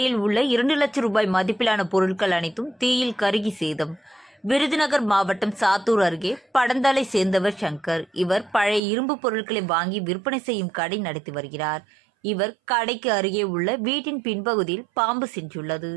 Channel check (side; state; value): left; drops out; at 8.8 s